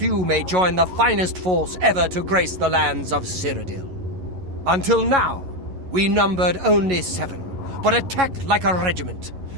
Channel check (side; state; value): left; late; 11 ms